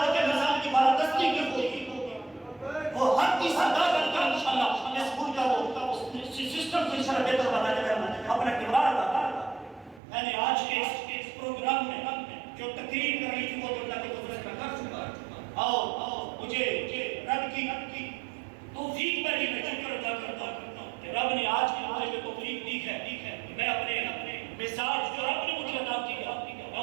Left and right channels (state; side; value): drops out; left; at 10.0 s